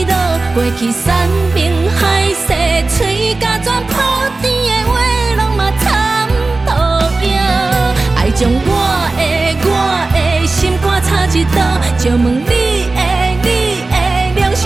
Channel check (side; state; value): left; quieter; 3.4 dB